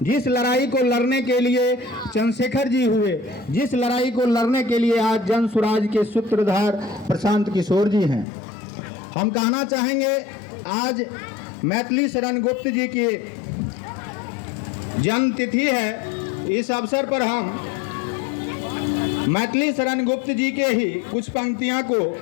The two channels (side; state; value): right; drops out; at 8.2 s